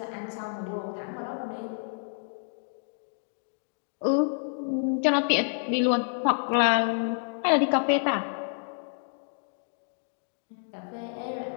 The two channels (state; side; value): silent; right; digital silence